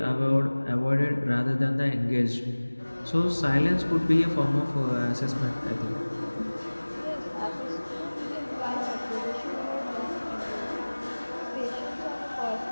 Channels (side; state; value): both; inverted; correlation -1.00